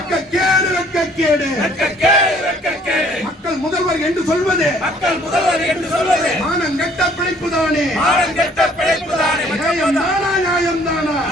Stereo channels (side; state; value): both; normal; correlation 0.59